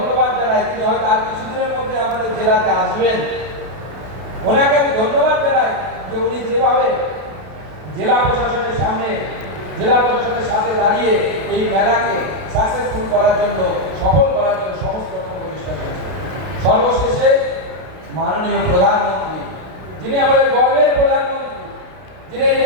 জানাই। তিনি হয়তো আর কিছুদিনের মধ্যে আমাদের জেলাতে আসবেন, ওনাকে আমি ধন্যবাদ জানাই যে উনি যেভাবে জেলা প্রশাসনের সাথে দাঁড়িয়ে এই মেলাকে সাকসেসফুল করার জন্য, সফল করার জন্য সমস্ত রকম প্রচেষ্টা করেছেন। সর্বশেষে মাননীয় প্রধানমন্ত্রী, যিনি আমাদের গর্বের প্রধানমন্ত্রী, যিনি এই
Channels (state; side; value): late; left; 32 ms